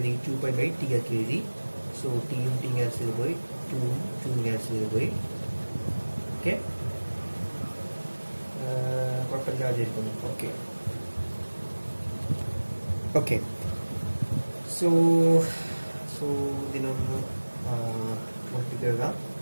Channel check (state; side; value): inverted; both; correlation -1.00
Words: 2π/t ആക്കി എഴുതി. സോ ടിയും ടി ക്യാൻസൽ ചെയ്ത് പോയി, 2ഉം 2 ക്യാൻസൽ ചെയ്ത് പോയി. ഓക്കെ, കുഴപ്പമില്ലാതിരിക്കുന്നു. Okay okay. സോ ഇതിനൊന്ന് എഴുതാം.